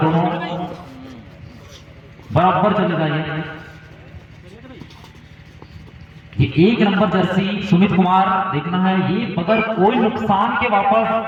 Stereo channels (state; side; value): identical; both; correlation 1.00